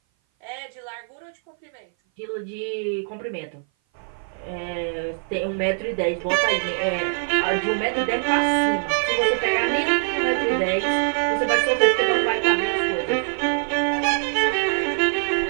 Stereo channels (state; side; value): silent; left; 57 dB below the other